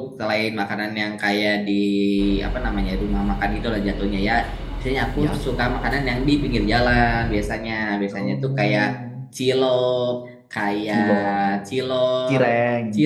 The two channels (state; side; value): identical; both; correlation 1.00